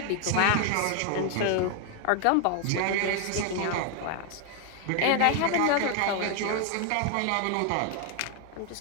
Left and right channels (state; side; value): different; both; correlation 0.01